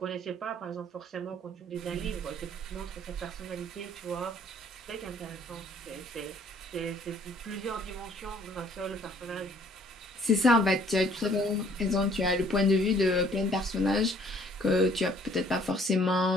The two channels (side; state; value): both; normal; correlation 0.59